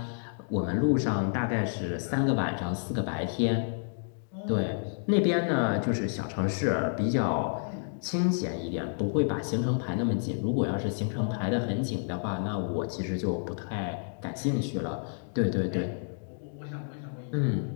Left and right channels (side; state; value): right; silent; digital silence